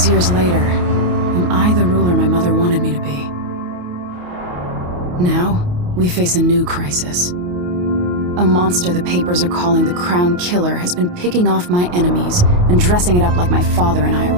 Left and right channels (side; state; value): left; late; 28 ms